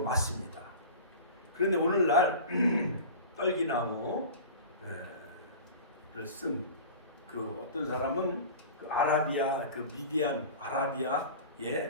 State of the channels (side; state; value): both; inverted; correlation -0.36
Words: 그런데 오늘날 떨기나무를 쓴 그 어떤 사람은 그 아라비아, 그 미디안